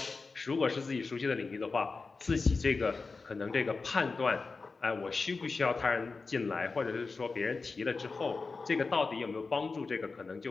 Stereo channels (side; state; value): right; quieter; 4.2 dB